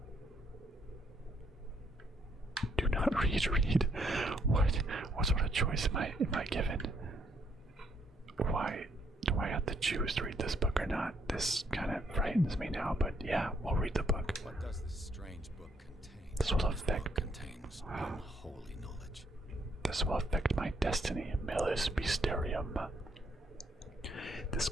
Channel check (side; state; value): both; normal; correlation 0.72